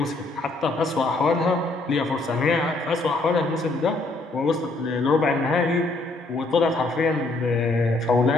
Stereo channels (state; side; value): quieter; right; 3.1 dB